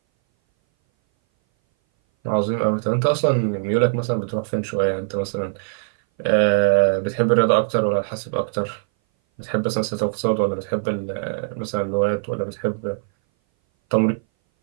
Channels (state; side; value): silent; left; 59 dB below the other